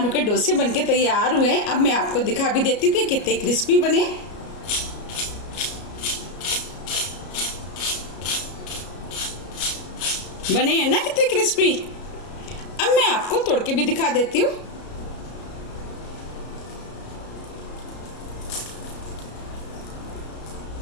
के डोसे बनके तैयार हुए हैं। अब मैं आपको दिखा भी देती हूँ कि कितने क्रिस्पी बने। बने हैं ना कितने क्रिस्पी। अब मैं आपको तोड़ के भी दिखा देती हूँ।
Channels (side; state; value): right; late; 33 ms